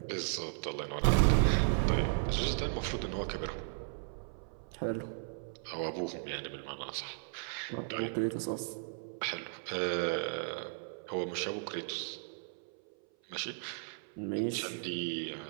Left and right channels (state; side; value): silent; left; 54 dB below the other